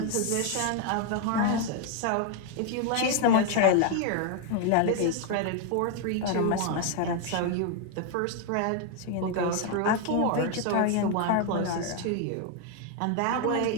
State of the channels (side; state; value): both; different; correlation 0.01